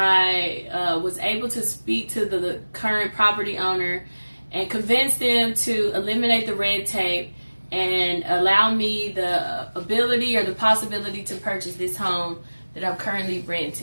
was able to speak to the current property owner and convince them to eliminate the red tape and allow me the ability or the possibility to purchase this home that I'm currently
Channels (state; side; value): inverted; both; correlation -1.00